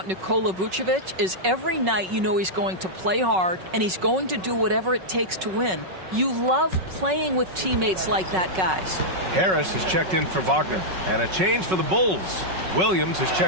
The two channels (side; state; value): left; late; 5.4 ms